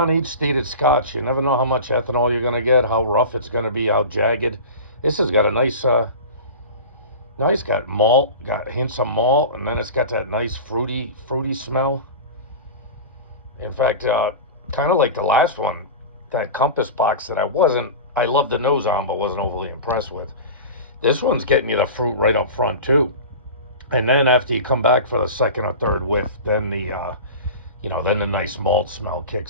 stated scotch, you never know how much ethanol you're going to get, how rough it's going to be, how jagged. This has got a nice, got malt, got hints of malt, and then it's got that nice fruity smell. In fact, kind of like the last one, that Compass box that I loved the nose on, but wasn't overly impressed with. This one's getting you the fruit right up front, too. And then after you come back for the second or third whiff, then then the nice malt smell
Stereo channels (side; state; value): both; inverted; correlation -0.32